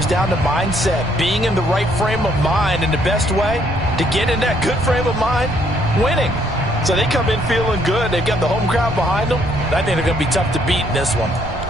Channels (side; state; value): right; noise; rumble, 11 dB below the sound